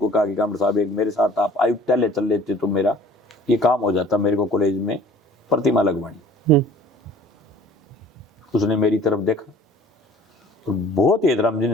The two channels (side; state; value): both; normal; correlation 0.51